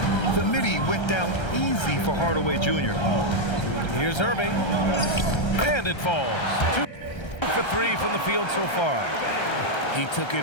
The midi went down easy for Hardaway Jr. Here's Irving. And it falls. 2 for 3 from the field so far. He took it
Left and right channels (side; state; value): right; late; 1.3 ms